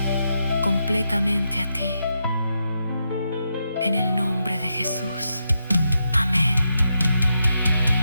completamente a ti. En el nombre de Jesús. Amén.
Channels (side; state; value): both; inverted; correlation -0.84